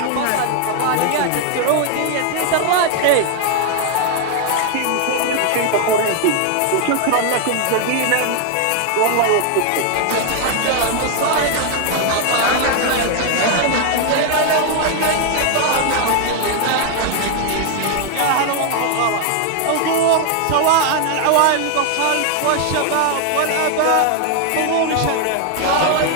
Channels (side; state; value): both; different; correlation 0.00